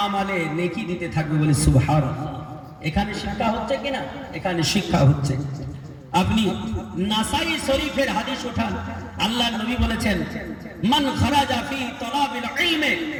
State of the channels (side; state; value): both; identical; correlation 1.00